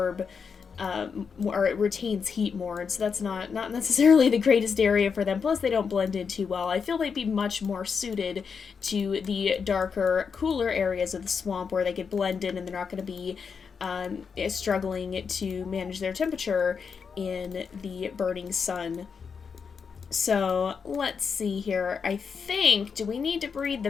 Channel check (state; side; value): quieter; right; 6.0 dB